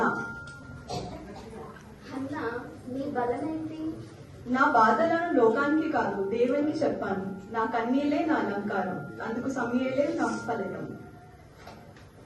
హన్నా, నీ బలమేంటి? నా బాధలను లోకానికి కాదు, దేవునికి చెప్పాను. నా కన్నీలే నా అలంకారం, అందుకు సమయలే నా ఫలితం.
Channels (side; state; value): both; identical; correlation 1.00